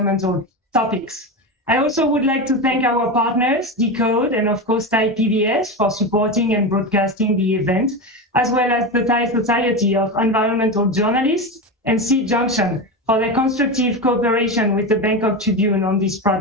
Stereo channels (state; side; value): normal; both; correlation 0.19